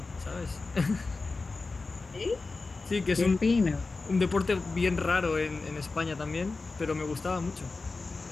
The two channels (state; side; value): quieter; right; 3.8 dB